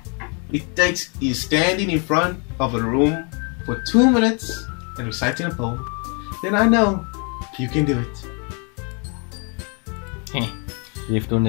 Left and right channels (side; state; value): right; quieter; 36.0 dB